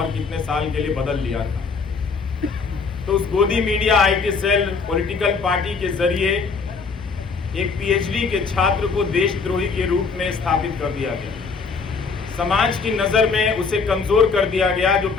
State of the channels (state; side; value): quieter; right; 4.9 dB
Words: कितने साल के लिए बदल लिया था। तो उस गोदी media, IT cell, political party के जरिए एक पीएचडी के छात्र को देशद्रोही के रूप में स्थापित कर दिया गया। समाज की नजर में उसे कमजोर कर दिया गया, जो